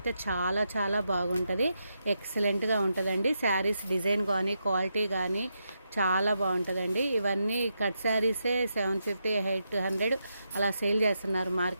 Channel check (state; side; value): inverted; both; correlation -0.84